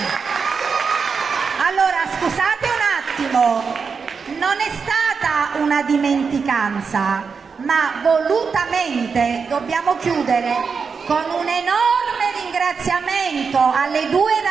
Allora, scusate un attimo. Non è stata una dimenticanza, ma volutamente dobbiamo chiudere con un enorme ringraziamento alle due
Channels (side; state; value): left; quieter; 5.5 dB